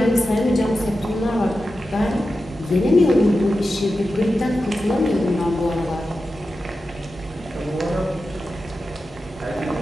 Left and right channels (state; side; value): normal; both; correlation 0.92